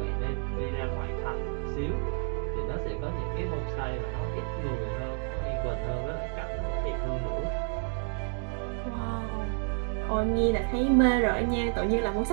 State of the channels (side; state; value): left; quieter; 39.7 dB